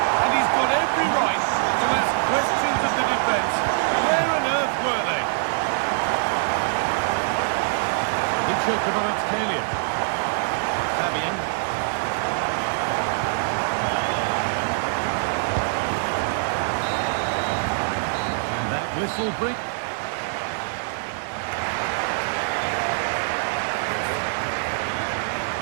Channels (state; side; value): silent; left; digital silence